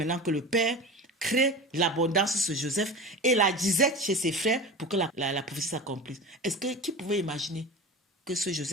que le Père crée l'abondance sur Joseph et la disette chez ses frères pour que la prophétie s'accomplisse. Qui pouvait imaginer que ce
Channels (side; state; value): both; normal; correlation 0.31